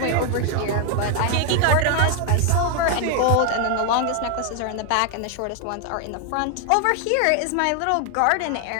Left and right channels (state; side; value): different; both; correlation 0.01